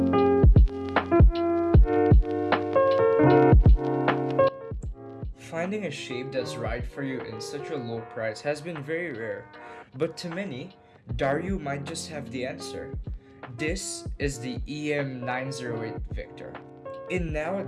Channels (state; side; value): identical; both; correlation 1.00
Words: Finding a shape that's right for you in such a low price has been very rare, but to many, Dareu might just have the answer. This is the EM908 Victor. In